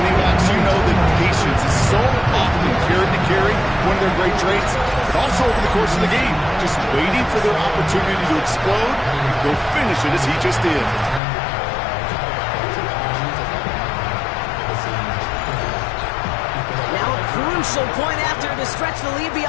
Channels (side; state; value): right; drops out; at 11.2 s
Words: backs, you know that patience is so often carried to carry, one of their great traits, but also over the course of the game, just waiting for their opportunity to explode, go finish it as he just did. Now a crucial point after to stretch the lead